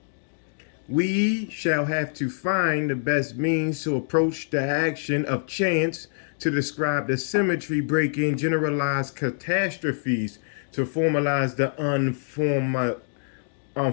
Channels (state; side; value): silent; right; digital silence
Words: We shall have to find the best means to approach the action of chance to describe the symmetry breaking generalized catastrophes to formalize the